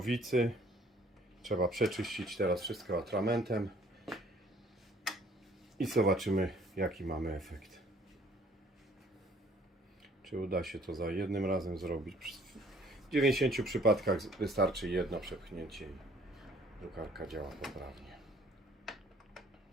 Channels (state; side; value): normal; both; correlation 0.58